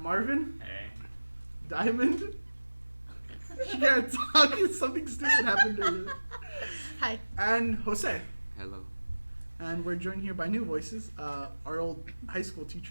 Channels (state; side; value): inverted; both; correlation -1.00